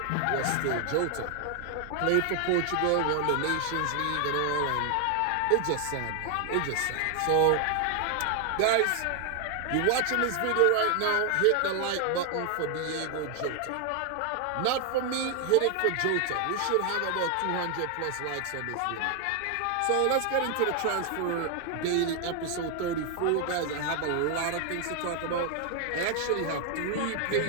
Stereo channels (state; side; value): different; both; correlation 0.00